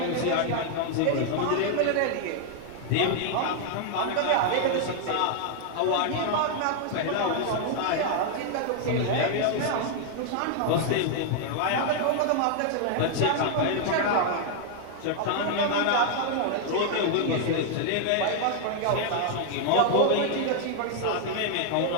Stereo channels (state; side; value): different; both; correlation 0.00